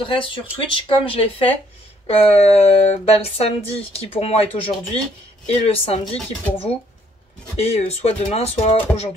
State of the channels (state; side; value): normal; both; correlation 0.66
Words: sur Twitch comme je l'ai fait le samedi qui pour moi est aujourd'hui, et le samedi qui pour vous et soit demain soit